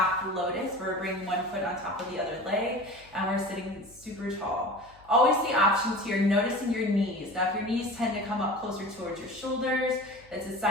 Lotus, where we're bringing one foot on top of the other leg, and we're sitting super tall. Always the options here, noticing your knees. Now, if your knees tend to come up closer towards your shoulders, it's a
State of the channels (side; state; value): left; noise; hum, 26 dB below the sound